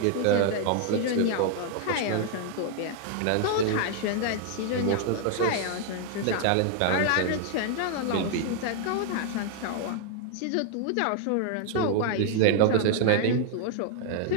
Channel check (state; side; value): different; both; correlation 0.00